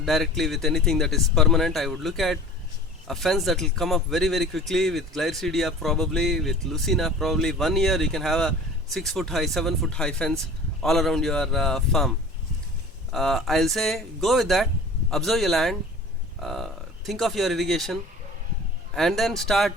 with anything that is permanent. I would look at a fence that will come up very quickly with Glycidia, probably with Lucina. Probably 1 year you can have a 6 foot high, 7 foot high fence all around your farm. I'll say go with that. Observe your land, think of your irrigation, and then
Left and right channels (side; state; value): both; normal; correlation 0.42